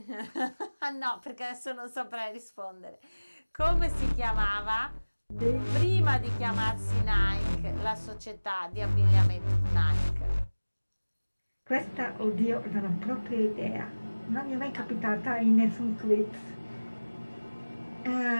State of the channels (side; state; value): both; inverted; correlation -1.00